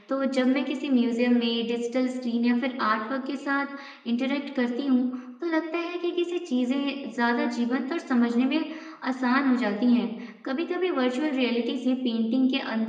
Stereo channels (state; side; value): identical; both; correlation 1.00